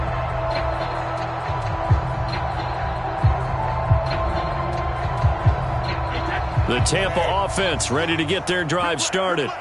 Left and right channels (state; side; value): identical; both; correlation 1.00